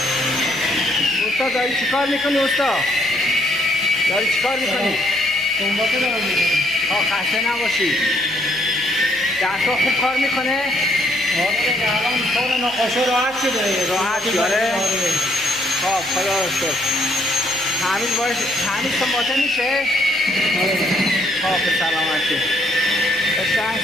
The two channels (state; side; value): noise; left; hum, 28 dB below the sound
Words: استاد داری چی کار میکنی؟ استاد داری چی کار میکنی؟ سنباته دارم میکنی. خسته نباشی. دستا خوب کار میکنه؟ آره الان کار نقاشه راحت شده. راحت شده؟ خب خدا رو شکر. تعمیر سنباته میشه؟ خب به سلامتی. قشنگ